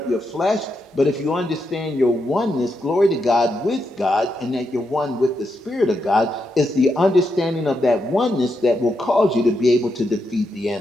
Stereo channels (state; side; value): normal; both; correlation 0.83